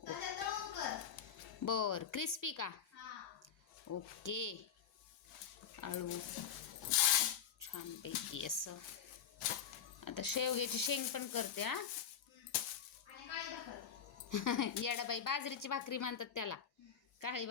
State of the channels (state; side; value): quieter; right; 8.1 dB